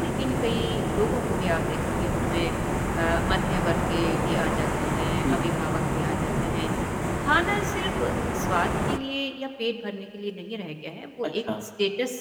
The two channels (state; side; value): identical; both; correlation 1.00